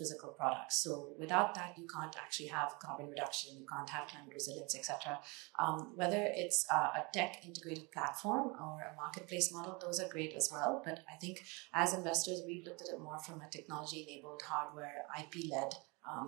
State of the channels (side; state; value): left; quieter; 28.5 dB